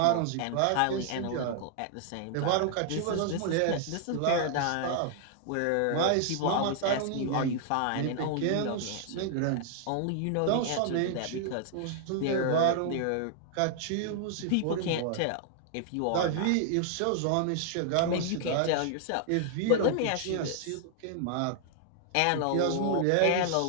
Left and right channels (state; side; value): different; both; correlation 0.00